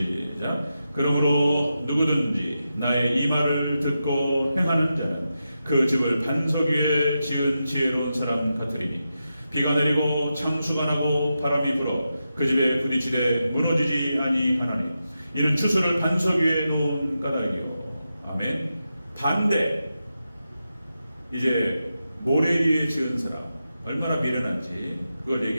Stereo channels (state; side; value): inverted; both; correlation -0.89